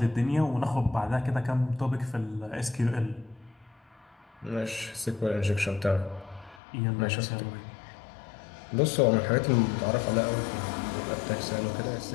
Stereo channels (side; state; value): right; drops out; at 6.6 s